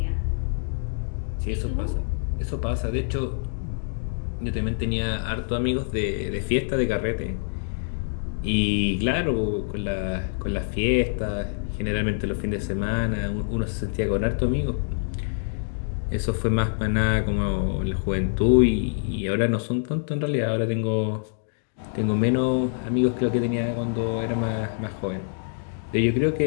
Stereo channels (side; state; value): right; silent; digital silence